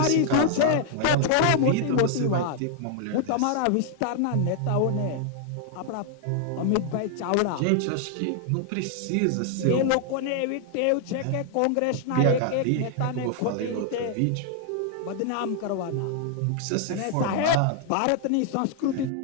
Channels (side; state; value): both; different; correlation 0.00